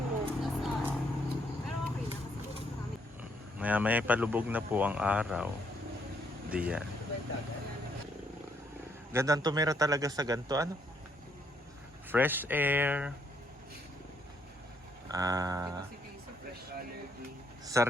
Maya-maya palubog na po ang araw. Diyan. Gandang tumira talaga sa ganito. Ano? Fresh air.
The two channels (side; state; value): both; normal; correlation 0.71